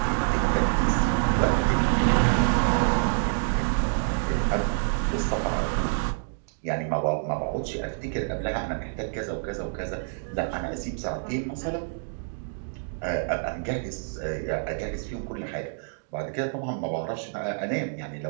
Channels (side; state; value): left; silent; digital silence